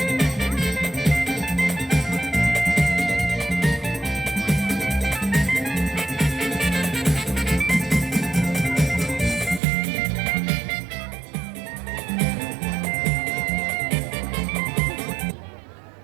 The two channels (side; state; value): left; drops out; at 9.6 s